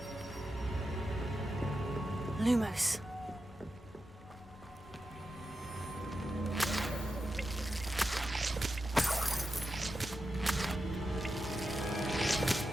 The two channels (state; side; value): normal; both; correlation 0.89